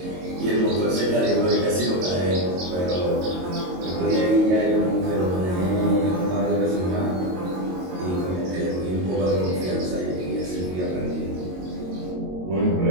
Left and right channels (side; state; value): left; late; 22 ms